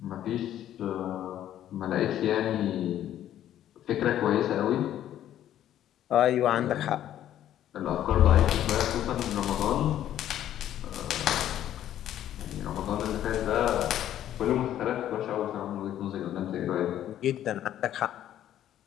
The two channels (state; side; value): quieter; right; 11.7 dB